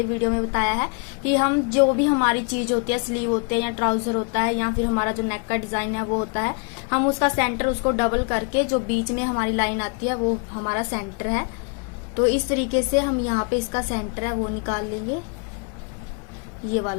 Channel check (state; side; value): quieter; right; 35.6 dB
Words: वीडियो में बताया है कि हम जो भी हमारी चीज होती है, स्लीव होते हैं या ट्राउजर होता है या फिर हमारा जो नेक का डिजाइन है वो होता है, हम उसका सेंटर उसको डबल करके जो बीच में हमारी लाइन आती है वो हमारा सेंटर है। तो इस तरीके से हम यहाँ पे इसका सेंटर है वो निकाल लेंगे, ये